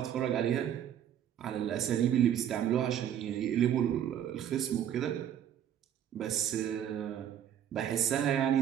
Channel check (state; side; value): quieter; left; 10.0 dB